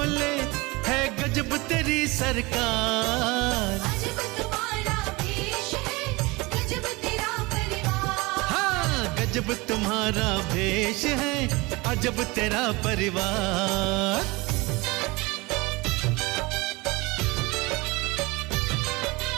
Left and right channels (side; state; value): left; quieter; 24.0 dB